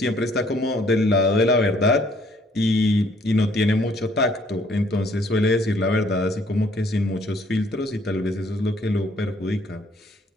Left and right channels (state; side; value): normal; both; correlation 0.63